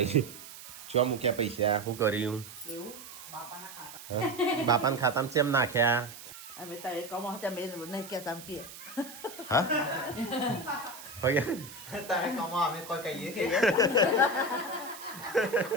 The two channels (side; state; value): right; noise; hiss, 15 dB below the sound